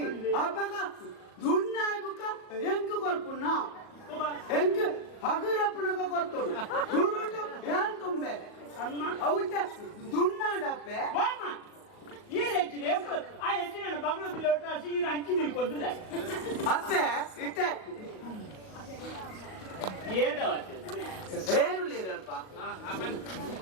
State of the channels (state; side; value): late; right; 38 ms